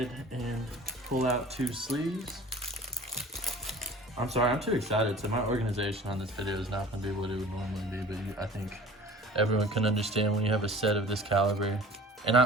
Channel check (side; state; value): both; normal; correlation 0.44